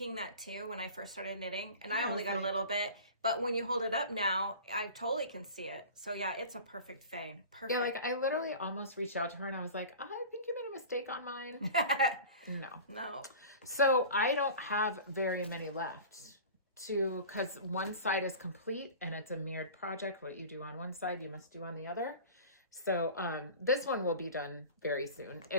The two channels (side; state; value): both; inverted; correlation -0.37